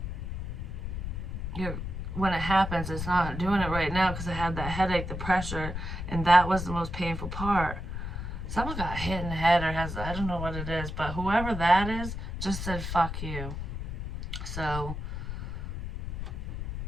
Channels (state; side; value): noise; left; rumble, 5 dB below the sound